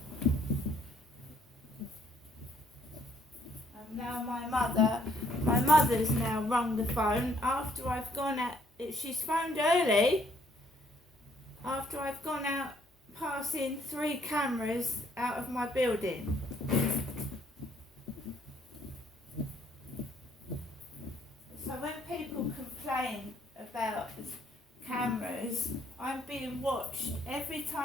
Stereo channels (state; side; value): normal; both; correlation 0.66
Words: Now my mother's now rung the phone after I've gone out. She's phoned early after I've gone out passing 3 cameras out of my building. So when people complain about cameras, I'm being watched every